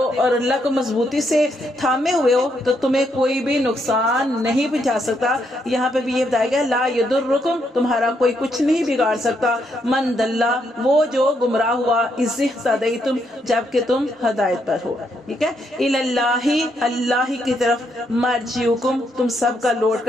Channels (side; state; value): both; normal; correlation 0.76